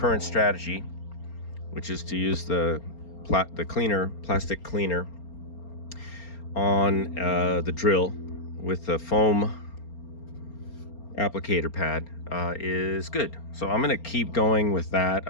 strategy, which is to use the plastic cleaner on the drill with the foam applicator pad is good. So I'm gonna keep going with that.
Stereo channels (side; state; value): right; late; 4.3 ms